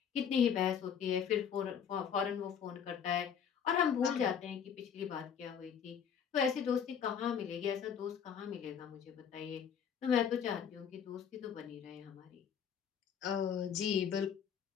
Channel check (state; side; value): quieter; right; 7.8 dB